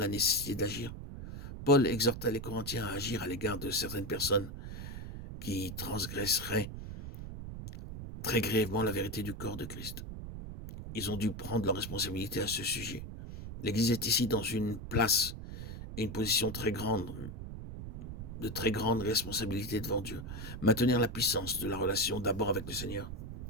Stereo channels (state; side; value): noise; right; rumble, 9 dB below the sound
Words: nécessité d'agir. Paul exhorta les Corinthiens à agir à l'égard de certaines personnes qui transgresseraient très grièvement la vérité du corps de Christ. Ils ont dû prendre leur responsabilité à ce sujet. L'Église est ici dans une place et une position très grande, de très grande responsabilité devant Dieu. Maintenir la puissance de la relation d'abord avec le Seigneur,